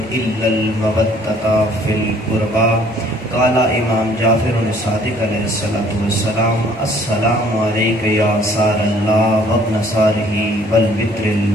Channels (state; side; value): normal; both; correlation 0.58